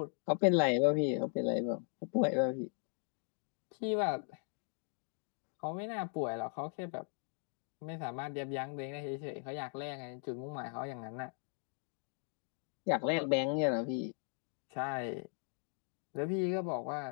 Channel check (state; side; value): silent; right; 52 dB below the other